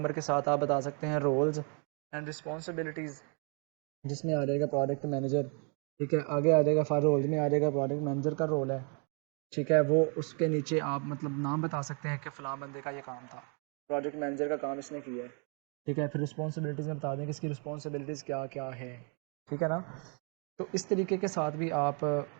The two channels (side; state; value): left; quieter; 37.7 dB